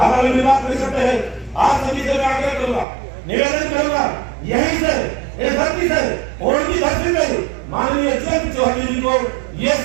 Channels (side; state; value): left; drops out; at 2.9 s